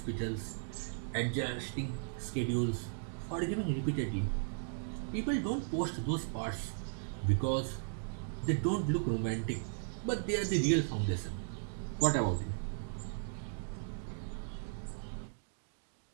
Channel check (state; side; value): silent; left; digital silence